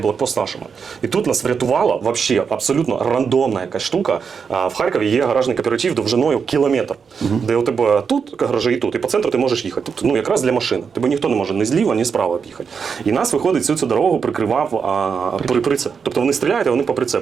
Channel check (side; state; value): left; quieter; 6.1 dB